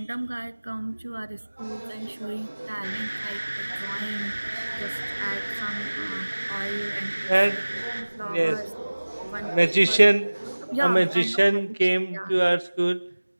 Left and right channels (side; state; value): both; inverted; correlation -1.00